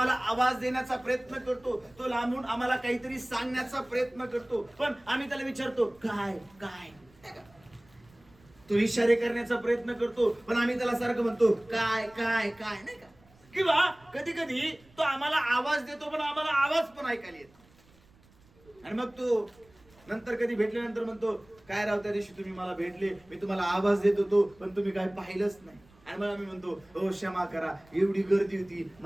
आवाज देण्याचा प्रयत्न करतो, तो लांबून आम्हाला काहीतरी सांगण्याचा प्रयत्न करतो, पण आम्ही त्याला विचारतो काय काय. तो इशारे करण्याचा प्रयत्न करतो, पण आम्ही त्याला सारखं म्हणतो काय काय काय नाही का. किंवा कधी कधी तो आम्हाला आवाज देतो, पण आम्हाला आवाज पण ऐकायला येतो. आणि मग तो नंतर कधी भेटल्यानंतर म्हणतो काय राव, त्या दिवशी तुम्ही मला भेटले, मी तुम्हाला आवाज देत होतो, पण तुम्ही काय पाहिलंच नाही. आणि मग आम्ही म्हणतो हो क्षमा करा, एवढी गर्दी होती,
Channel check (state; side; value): noise; right; rumble, 29 dB below the sound